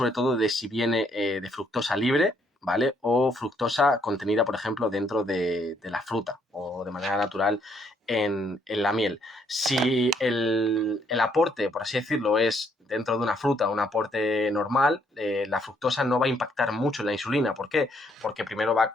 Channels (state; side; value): normal; both; correlation 0.70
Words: todo de si viene de fructosa libre, ¿vale? O fructosa contenida, por ejemplo, dentro de la fruta o de manera natural en la miel. Si el aporte, por así decirlo, es dentro de una fruta, un aporte normal, la fructosa no va a impactar mucho en la insulina. ¿Por qué? Porque primero va